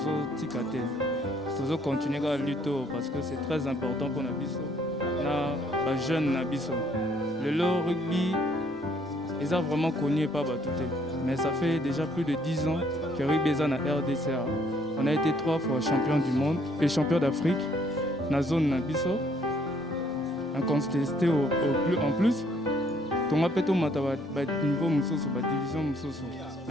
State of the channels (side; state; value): both; normal; correlation 0.65